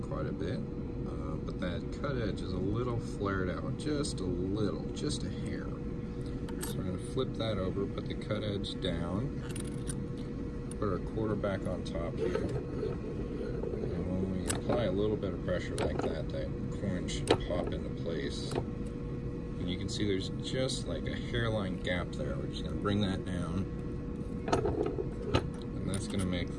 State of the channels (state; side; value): identical; both; correlation 1.00